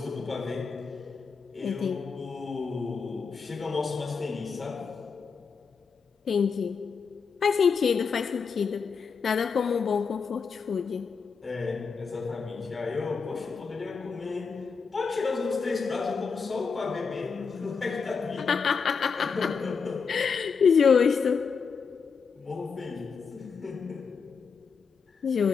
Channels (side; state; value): right; quieter; 5.5 dB